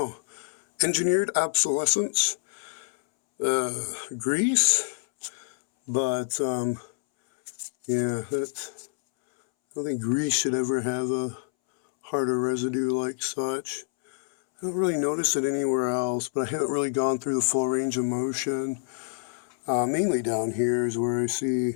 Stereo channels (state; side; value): silent; right; 60 dB below the other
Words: engineered obsolescence, grease, but, yeah, that's, I don't think grease should ever have a harder residue like such. I don't really notice it anywhere else, but I haven't really gone through the full range of motion. Mainly down here is where I see,